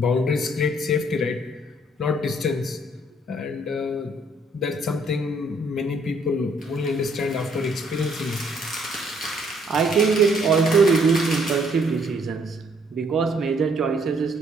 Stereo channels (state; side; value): normal; both; correlation 0.66